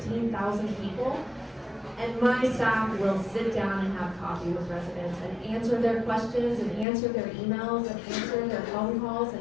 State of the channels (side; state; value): right; drops out; at 6.9 s